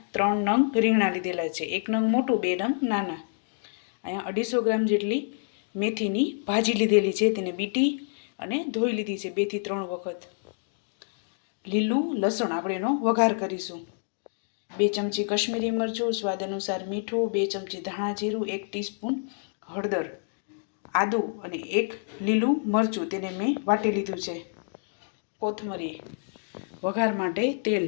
3 નંગ રીંગણા લીધેલા છે. 1 નંગ મોટું, 2 નંગ નાના. અહીંયા 250 ગ્રામ જેટલી મેથીની ભાજી લીધેલી છે. તેને બીટી અને ધોઈ લીધી છે 2 થી 3 વખત. લીલું લસણ આપણે એનો વઘાર કરીશું. 2 ચમચી કશ્મીરી મરચું, સ્વાદ અનુસાર મીઠું, 2 ચમચી ધાણા જીરું, 1 ટીસ્પૂન હળદર, આદું અને 1 લીલું મરચું તેને મેં વાટી લીધું છે. કોથમરી, વઘાર માટે તેલ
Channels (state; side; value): silent; right; digital silence